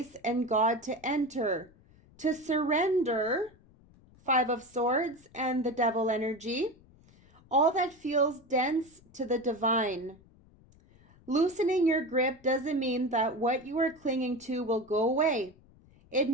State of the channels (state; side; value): noise; left; rumble, 27 dB below the sound